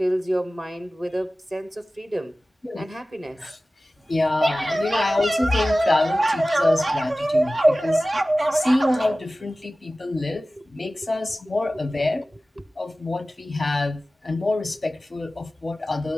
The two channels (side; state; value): both; normal; correlation 0.96